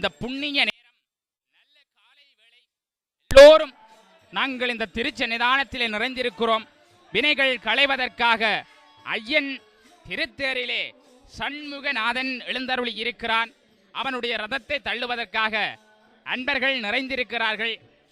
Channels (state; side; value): identical; both; correlation 1.00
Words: புண்ணிய நேரம், நல்ல காலை வேளை, எல்லோரும் நாங்கள் இந்த திருச்சன்னிதானத்திலே நிறைந்திருக்கிறோம். வினைகள் களைவதற்காக ஐயன் திருத்தேரிலே சண்முகநாதன் எழுந்தருளி இருக்கிறான். அவனுடைய ரதத்தை தள்ளுவதற்காக அன்பர்கள் நிறைந்திருக்கிறார்கள்.